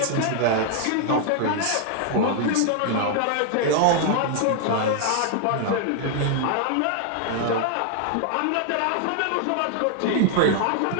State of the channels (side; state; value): both; different; correlation 0.00